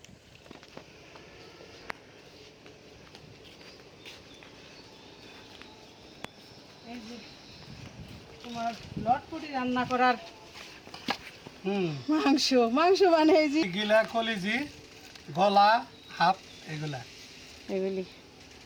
এই যে তোমার লটপটি রান্না করার মাংস মাংস মানে এই যে গিলা কলিজি, গলা, হাত, এগুলা। এগুলি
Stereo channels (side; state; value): both; identical; correlation 1.00